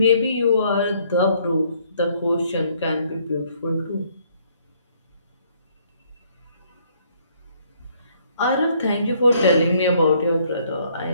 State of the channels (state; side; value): inverted; both; correlation -0.66